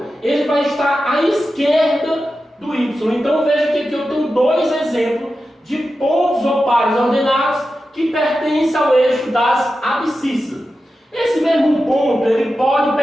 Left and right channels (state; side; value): normal; both; correlation 0.91